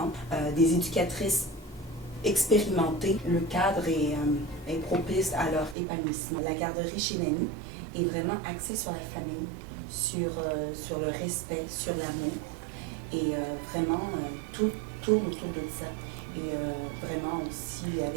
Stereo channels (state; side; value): drops out; left; at 5.8 s